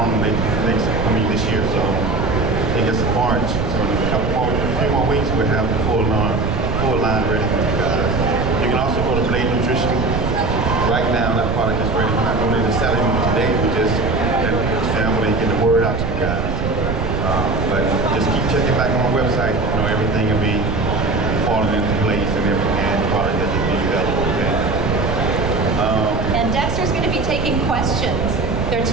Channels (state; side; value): noise; right; rumble, 3 dB below the sound